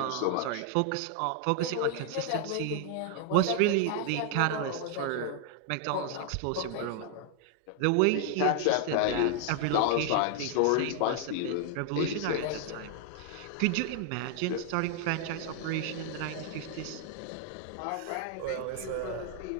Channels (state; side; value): different; both; correlation 0.00